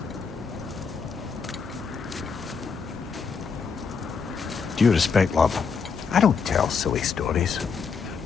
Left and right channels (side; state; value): right; quieter; 5.7 dB